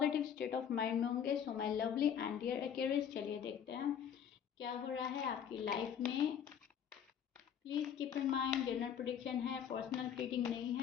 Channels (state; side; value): quieter; right; 8.5 dB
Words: state of mind में होंगे। So my lovely and dear Aquarius, चलिए देखते हैं क्या हो रहा है आपकी लाइफ में। Please keep in mind general prediction है, पर्सनल रीडिंग नहीं